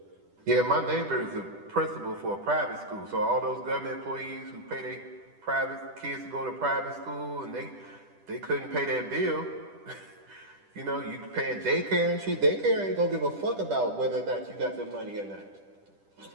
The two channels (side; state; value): left; late; 10 ms